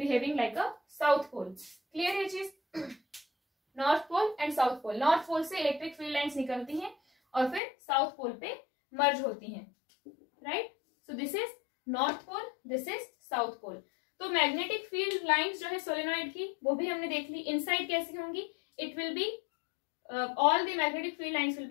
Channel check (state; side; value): drops out; right; at 7.6 s